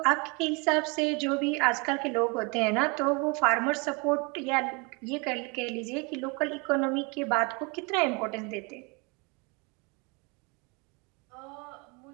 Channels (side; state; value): left; quieter; 30.6 dB